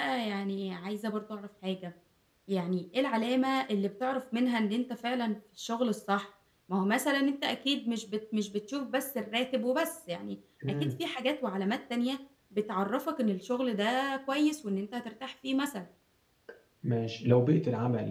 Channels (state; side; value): identical; both; correlation 1.00